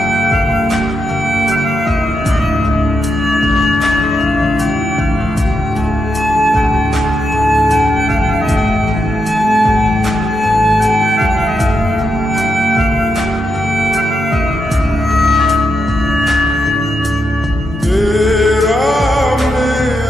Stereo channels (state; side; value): normal; both; correlation 0.84